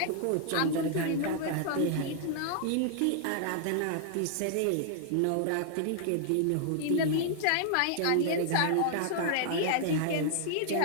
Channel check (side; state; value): both; different; correlation -0.01